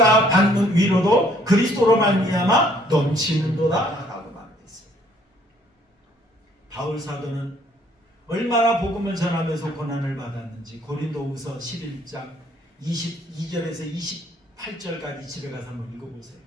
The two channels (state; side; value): normal; both; correlation 0.62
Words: 받는 위로도 그리스도로 말미암아 넘치는도다 라고 말했어요. 바울 사도는 얼마나 복음을 전하면서 고난을 받았는지 고린도후서 11장 22절에서 28절까지 집에 가서 한번 읽어보세요.